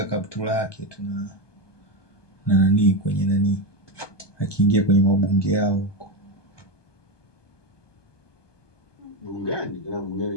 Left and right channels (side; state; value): right; late; 1.2 ms